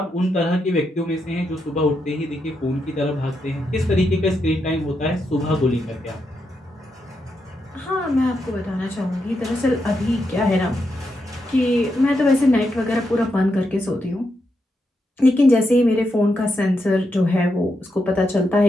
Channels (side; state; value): both; normal; correlation 0.83